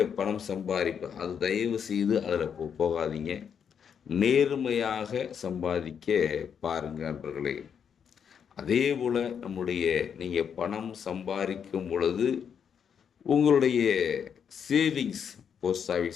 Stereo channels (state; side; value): quieter; right; 7.5 dB